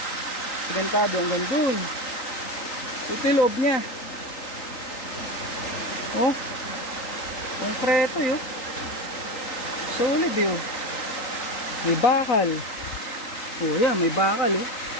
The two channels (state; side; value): late; right; 3.8 ms